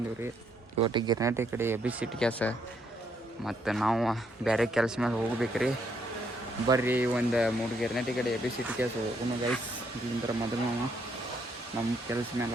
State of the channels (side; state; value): both; normal; correlation 0.72